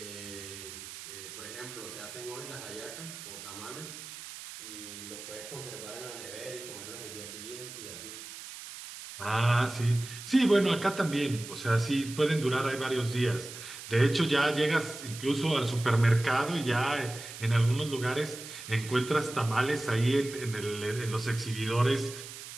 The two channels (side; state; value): right; noise; hiss, 12 dB below the sound